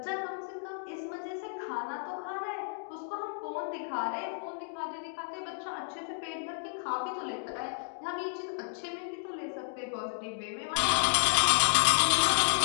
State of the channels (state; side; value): silent; right; digital silence